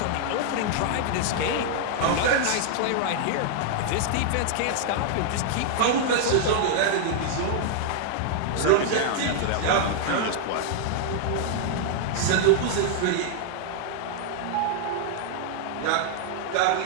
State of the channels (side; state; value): both; different; correlation 0.00